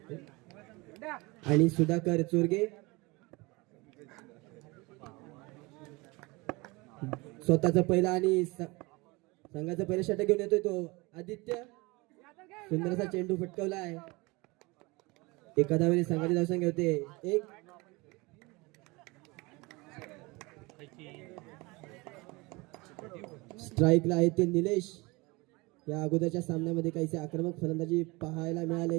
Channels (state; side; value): quieter; left; 24.7 dB